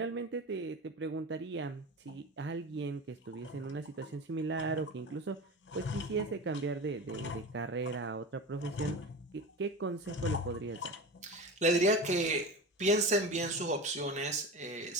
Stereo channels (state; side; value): normal; both; correlation 0.29